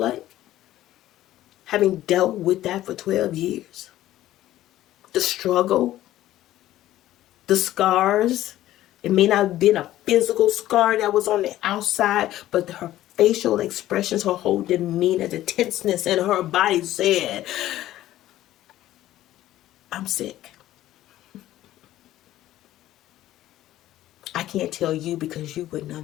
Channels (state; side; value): quieter; right; 14.1 dB